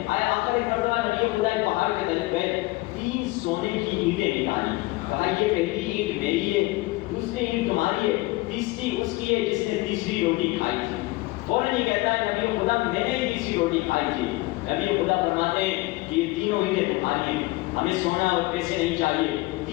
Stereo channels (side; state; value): right; quieter; 21.6 dB